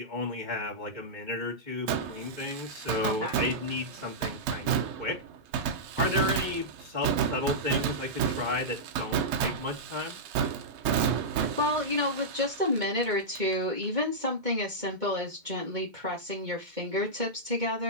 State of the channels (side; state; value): left; late; 2.1 ms